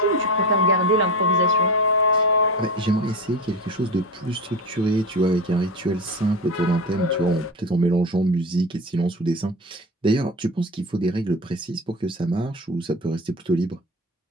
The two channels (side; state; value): both; normal; correlation 0.26